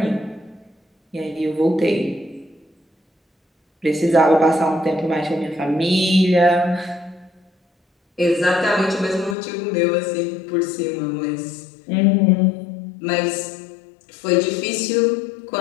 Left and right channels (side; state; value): right; drops out; at 9.3 s